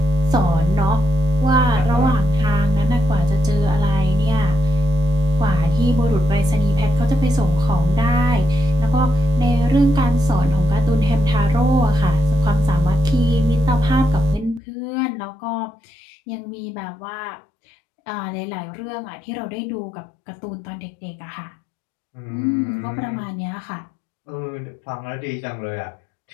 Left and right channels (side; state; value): right; drops out; at 14.6 s